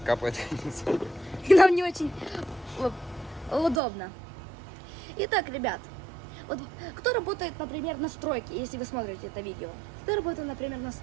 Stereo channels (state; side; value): drops out; left; at 3.8 s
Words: капает. И нам не очень удобно. Итак, ребят, вот кто работает, например, на стройке, если вы смотрите это видео? Кто работает, например, на